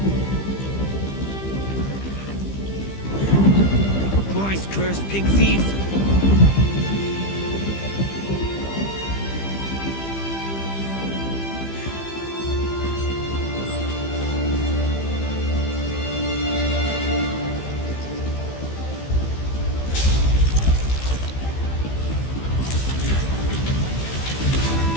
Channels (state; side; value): late; right; 15 ms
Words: Cursed pig thief!